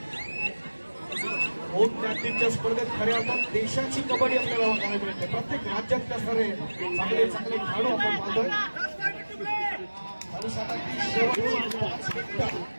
ज्ञातीच्या स्पर्धेत खऱ्या अर्थात देशाची कबड्डी आपल्याला बघायला मिळते. प्रत्येक राज्यात असणारे चांगले चांगले खेळाडू आपण पाहतोय.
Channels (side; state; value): both; inverted; correlation -1.00